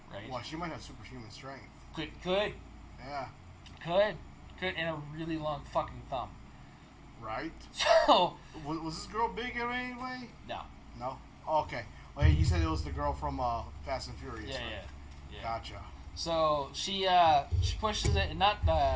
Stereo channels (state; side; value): identical; both; correlation 1.00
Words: Right? Well, she might have superhuman strength. Could. Yeah. Could, and a really long fucking thumb. Right? So... Was this girl big in any way? No. Oh, okay. Well, you said it was the girl from Fast and Furious, right? Yeah. Gotcha. So, she pushes it, not